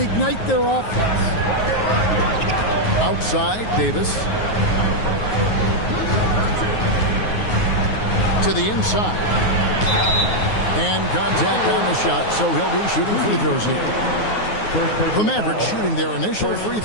their offense. Outside, Davis. To the inside. And contact on the shot, so he'll be shooting free throws here. The Mavericks shooting their initial free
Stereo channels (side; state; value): right; late; 9.4 ms